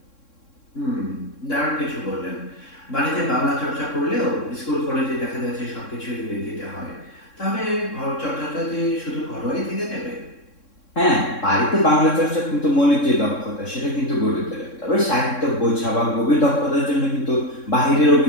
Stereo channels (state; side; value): late; right; 3.6 ms